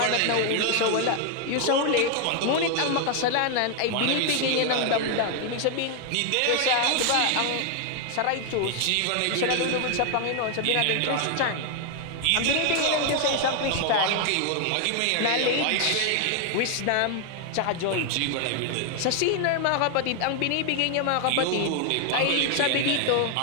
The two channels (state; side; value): different; both; correlation 0.00